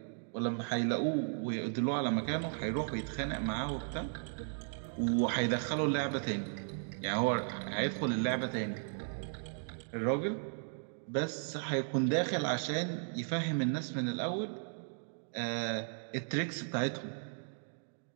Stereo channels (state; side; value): silent; left; digital silence